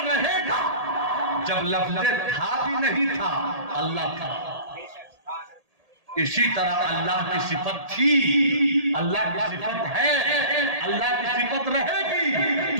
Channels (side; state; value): left; late; 1.8 ms